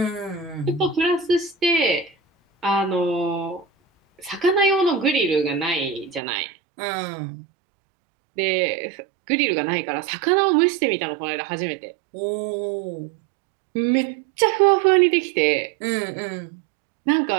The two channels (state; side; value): drops out; left; at 6.2 s